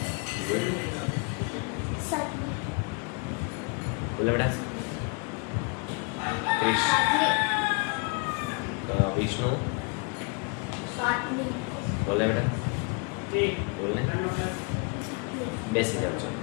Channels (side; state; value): right; quieter; 34.2 dB